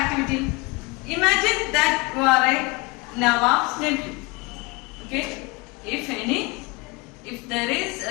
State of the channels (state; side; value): quieter; right; 25.6 dB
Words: activity? Imagine that you are a Nawab's nephew. Okay, if